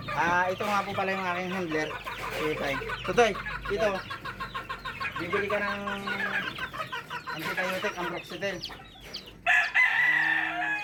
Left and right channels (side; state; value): both; identical; correlation 1.00